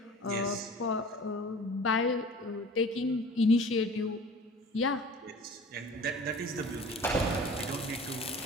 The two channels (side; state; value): both; normal; correlation 0.43